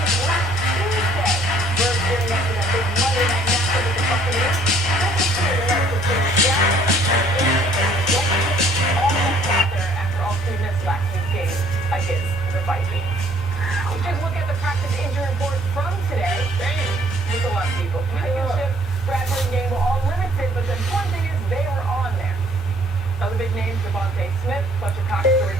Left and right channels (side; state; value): both; normal; correlation 0.60